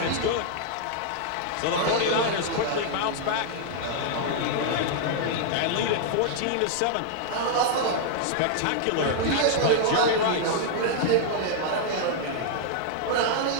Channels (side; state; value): both; different; correlation -0.01